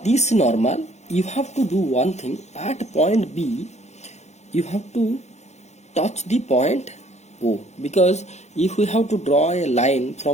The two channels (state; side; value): late; right; 0.33 ms